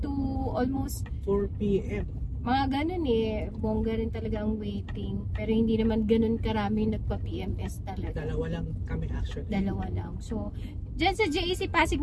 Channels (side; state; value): both; identical; correlation 1.00